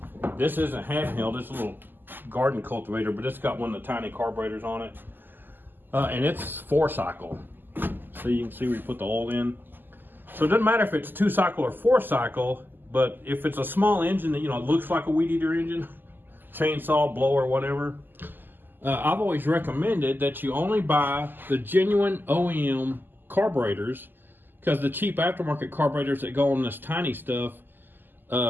this isn't handheld, it's a little garden cultivator, but it's got one of the tiny carburetors on it. And it's 4-cycle. So you can see where you put the oil in. So it doesn't matter if it's 2-cycle or 4-cycle, but if it's a small engine that, looks like a weed eater engine, chainsaw, blower, whatever, I've always recommended that you only buy the genuine OEM carburetors, because the cheap aftermarket carburetors that go on this tiny stuff,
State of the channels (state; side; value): late; left; 0.091 ms